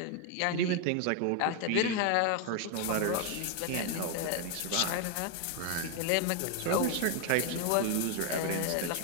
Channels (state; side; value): different; both; correlation 0.01